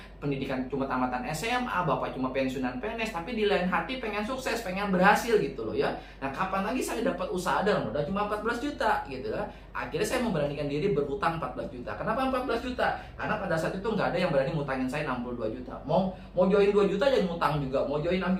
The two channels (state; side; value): identical; both; correlation 1.00